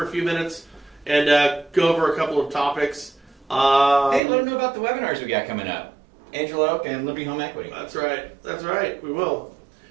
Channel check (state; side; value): drops out; left; at 4.2 s